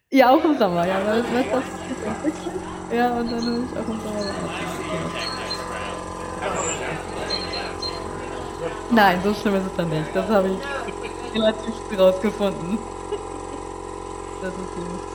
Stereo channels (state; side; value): identical; both; correlation 1.00